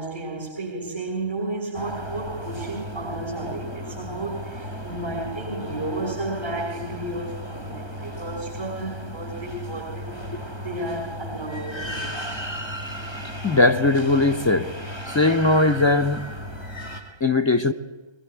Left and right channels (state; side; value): late; right; 1.3 ms